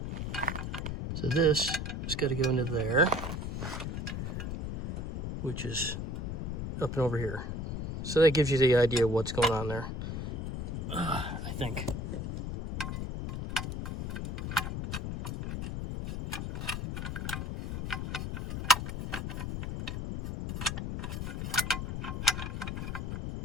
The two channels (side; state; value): left; noise; rumble, 3 dB below the sound